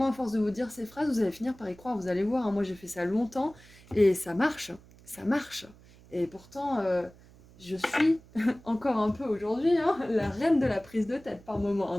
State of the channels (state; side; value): noise; right; hum, 24 dB below the sound